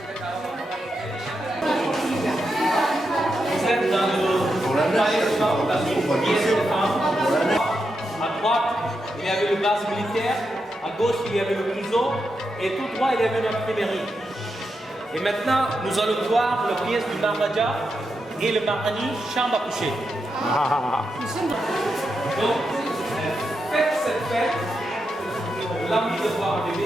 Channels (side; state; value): both; normal; correlation 0.86